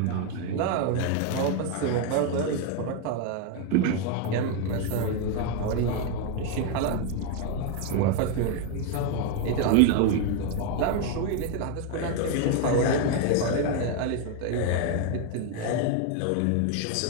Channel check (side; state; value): both; different; correlation 0.01